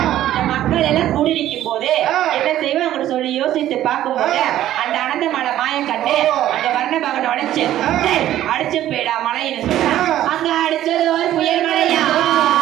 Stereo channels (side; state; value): left; quieter; 12.8 dB